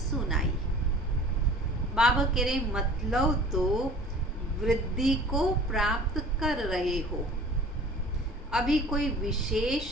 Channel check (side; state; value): both; normal; correlation 0.45